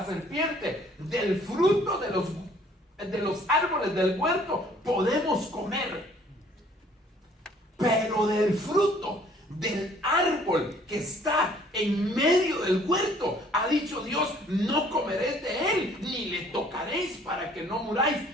serpiente: del fruto de los árboles del huerto podemos comer, pero del fruto del árbol que está en medio del huerto, ha dicho Dios, no comeréis de él, ni le tocaréis para que no muráis.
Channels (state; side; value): normal; both; correlation 0.58